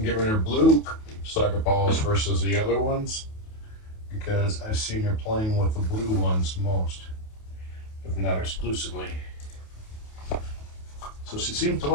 getting her blue soccer balls versus the other ones because I've seen her playing with the blue ones most, if not exclusively. So she seems to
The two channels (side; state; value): right; late; 28 ms